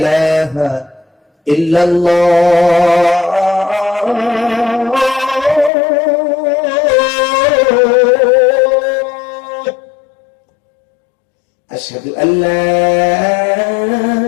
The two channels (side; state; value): right; drops out; at 5.7 s